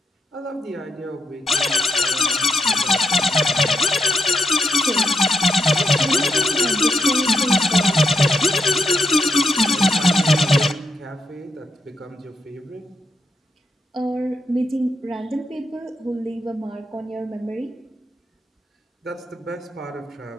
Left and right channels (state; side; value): normal; both; correlation 0.82